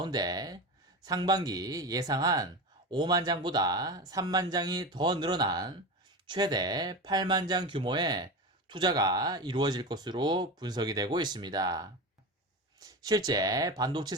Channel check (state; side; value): normal; both; correlation 0.24